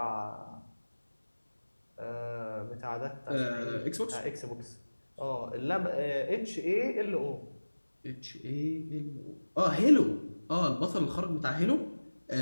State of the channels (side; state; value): both; inverted; correlation -1.00